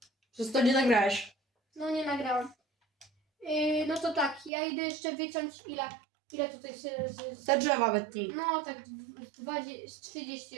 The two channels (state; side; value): drops out; left; at 4.5 s